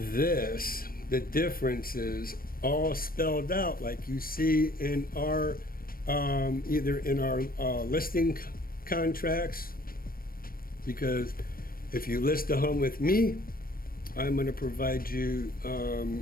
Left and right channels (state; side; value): late; right; 0.42 ms